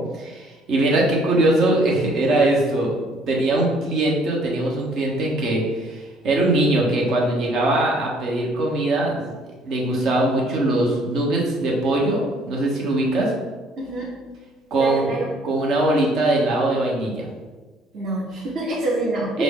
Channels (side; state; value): both; normal; correlation 0.61